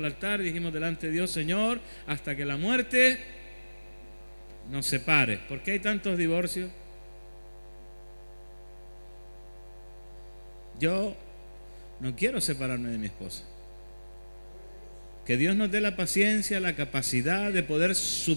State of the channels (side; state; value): both; inverted; correlation -1.00